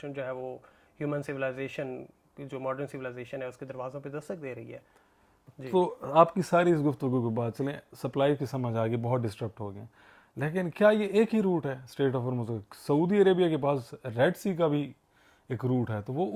جو ہے وہ ہیومن سویلائزیشن، جو ماڈرن سویلائزیشن ہے، اس کے دروازوں پہ دستک دے رہی ہے. تو آپ کی ساری اس گفتگو کے بعد چلیں سپلائی کی سمجھ آ گئی، بہت ڈسٹرپٹ ہو گئے، لیکن کیا یہ ایک ہی روٹ ہے اسٹریٹ آف ہارموز؟ سعودی عربیہ کے پاس ریڈ سی کا بھی ایک روٹ ہے، تو وہ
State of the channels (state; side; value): identical; both; correlation 1.00